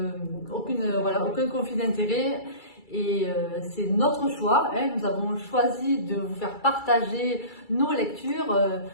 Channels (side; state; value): right; late; 2.3 ms